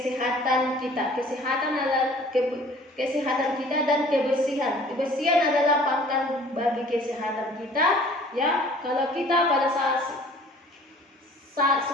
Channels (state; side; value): normal; both; correlation 0.51